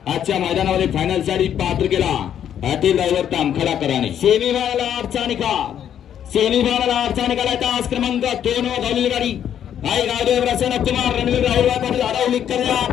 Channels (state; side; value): quieter; right; 9.7 dB